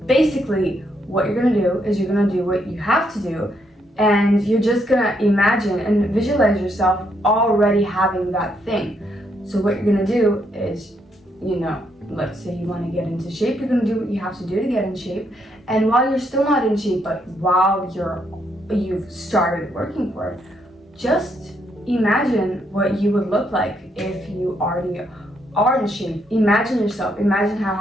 Basically, what you're gonna do is you're gonna do what you have to do, and you're just gonna imagine and visualize yourself already having that thing. So what you're gonna do is, let's say you wanna get into shape, you're gonna do what you have to do to get in shape. And while you're still not in shape, but while you've started working for it, just imagine what you would look like if you already are in shape. Imagine yourself. Imagine how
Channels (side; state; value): both; normal; correlation 0.75